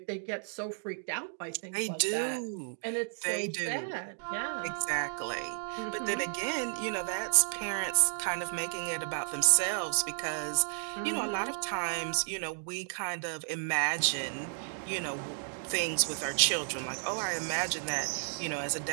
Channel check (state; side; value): silent; left; digital silence